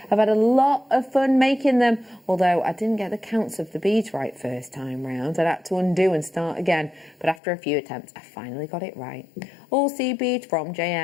I've had a lot of fun making them, although I didn't get the counts of the beads right first time round. I'd had to undo and start again, but after a few attempts, I finally got it right. All seed beads from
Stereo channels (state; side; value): drops out; right; at 7.4 s